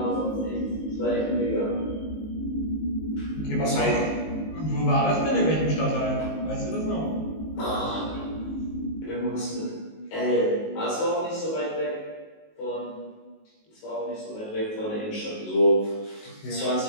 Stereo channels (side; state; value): right; late; 19 ms